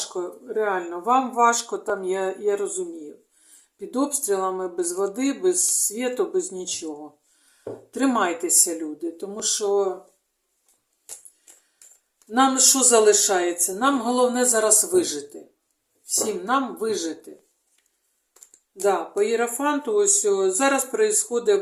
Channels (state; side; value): identical; both; correlation 1.00